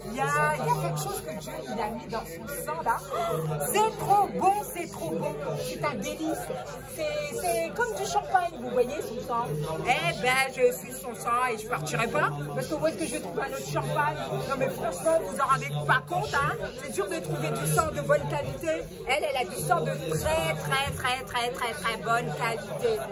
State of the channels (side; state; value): both; identical; correlation 1.00